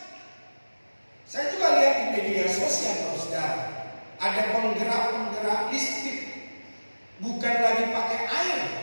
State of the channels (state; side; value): inverted; both; correlation -1.00